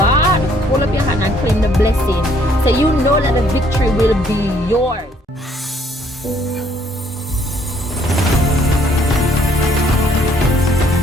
hold up your hand and claim the blessing. So you know that the victory will be yours.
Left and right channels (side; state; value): both; normal; correlation 0.65